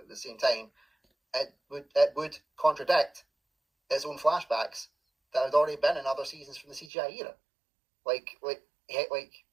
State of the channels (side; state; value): left; drops out; at 6.9 s